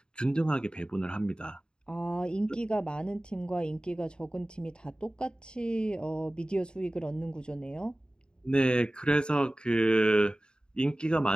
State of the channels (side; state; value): right; late; 0.049 ms